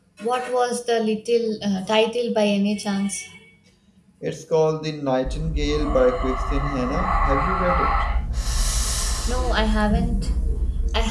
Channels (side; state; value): both; identical; correlation 1.00